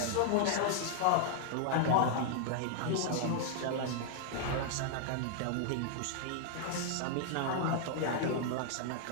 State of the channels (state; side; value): different; both; correlation -0.01